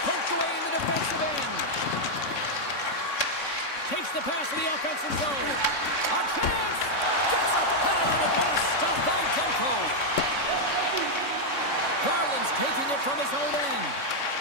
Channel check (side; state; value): right; late; 3.6 ms